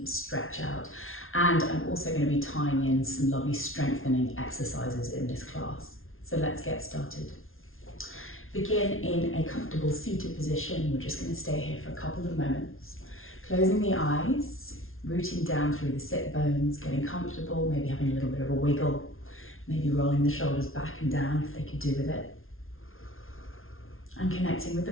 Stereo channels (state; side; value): late; right; 0.61 ms